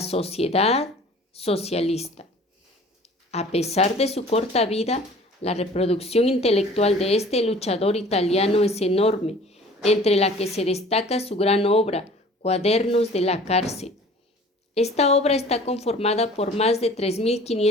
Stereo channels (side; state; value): both; normal; correlation 0.47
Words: sociedad socialista. A pesar de su corta vida, la reproducción intelectual de este luchador italiano es enorme, entre la que se destaca su gran obra, Cuadernos de la cárcel. Esta obra está conformada por más de